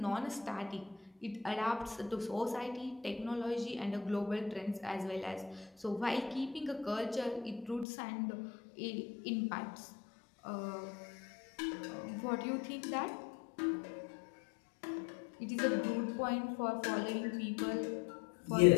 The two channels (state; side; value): drops out; right; at 7.9 s